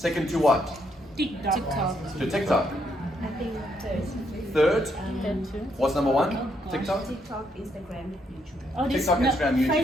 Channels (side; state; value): both; normal; correlation 0.74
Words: to what? TikTok. To TikTok. I think Third? third. What's number one? TikTok? TikTok, Instagram, YouTube. Oh, this, TikTok, Instagram, YouTube.